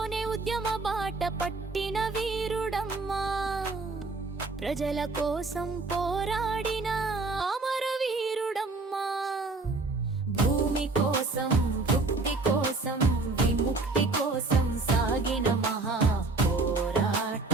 ఉద్యమ బాట పట్టిన వీరుడమ్మా ప్రజల కోసం పోరాడిన అమరవీరుడమ్మా భూమి కోసం భుక్తి కోసం విముక్తి కోసం సాగిన మహా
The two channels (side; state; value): left; quieter; 3.6 dB